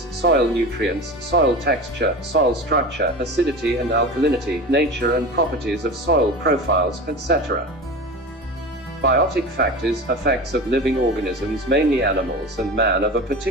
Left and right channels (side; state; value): both; normal; correlation 0.30